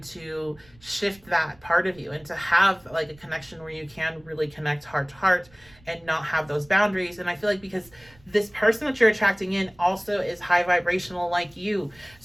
to shift that part of you and to have like a connection where you can really connect heart to heart and not have those boundaries. And I feel like because this person that you're attracting in also is high vibrational like you,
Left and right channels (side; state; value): right; noise; rumble, 27 dB below the sound